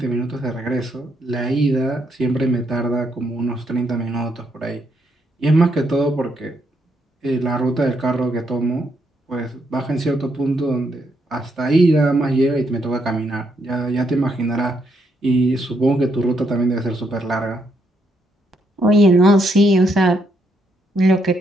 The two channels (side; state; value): both; normal; correlation 0.76